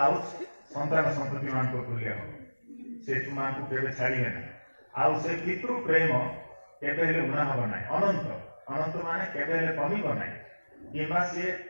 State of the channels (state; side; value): inverted; both; correlation -1.00